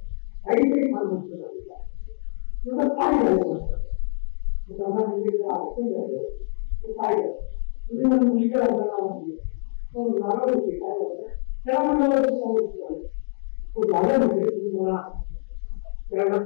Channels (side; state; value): right; silent; digital silence